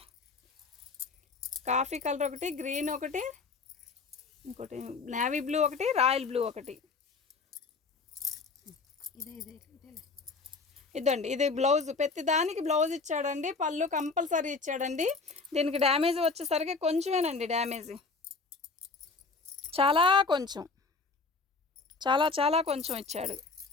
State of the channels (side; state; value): right; quieter; 4.2 dB